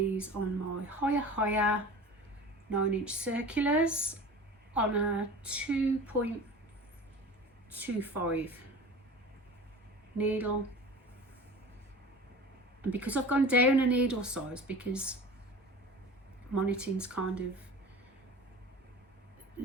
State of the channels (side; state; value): both; normal; correlation 0.37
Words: on my higher 9-inch circulars on a 2.25 needle. And because I've gone down a needle size, because my knitting's kind of